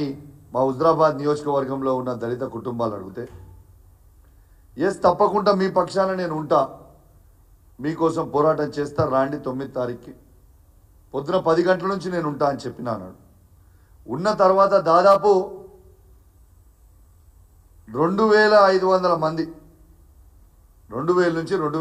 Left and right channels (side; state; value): both; identical; correlation 1.00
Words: మా హుజరాబాద్ నియోజకవర్గంలో ఉన్న దళిత కుటుంబాలు అడిగితే, ఎస్ తప్పకుండా మీ పక్షాన నేను ఉంటా, మీకోసం పోరాటం చేస్తా, రాండి 9 తారీఖుకి పొద్దున 10 గంటల నుంచి నేను ఉంటా అని చెప్పినా అన్నాడు. ఉన్న తర్వాత దాదాపు 2,500 మంది, 2,000 నుంచి